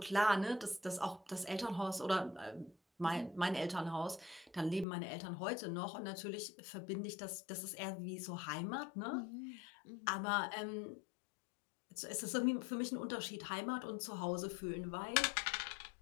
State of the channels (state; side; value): drops out; right; at 4.9 s